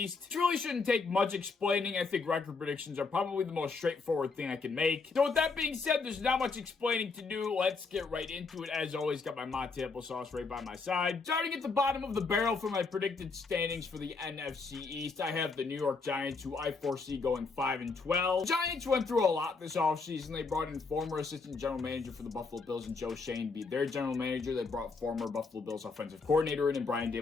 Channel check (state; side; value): quieter; right; 4.4 dB